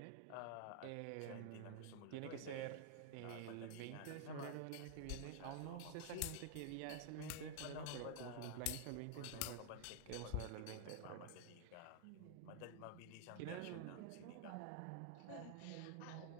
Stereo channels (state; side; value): different; both; correlation 0.00